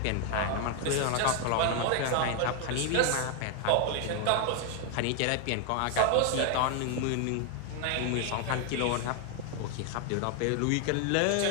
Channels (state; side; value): different; both; correlation 0.00